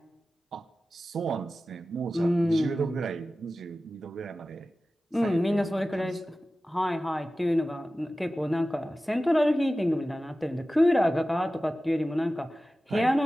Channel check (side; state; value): both; normal; correlation 0.95